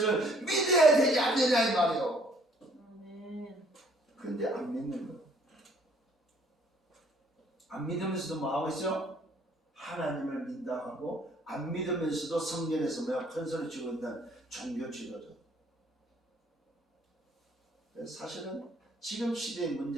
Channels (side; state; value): both; normal; correlation 0.61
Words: 믿어야 되지 않느냐 이 말이요. 그런데 안 믿는 거예요. 안 믿으면서도 뭐 하고 있어요? 하나님을 믿다 하고 안 믿으면서도 성전에서 큰 소리 치고 있는 종교 지도자. 사실은 지금 시대의